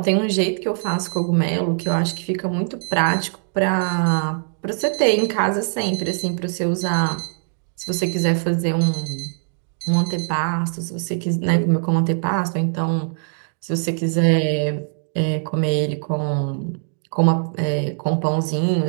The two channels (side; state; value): left; silent; 63 dB below the other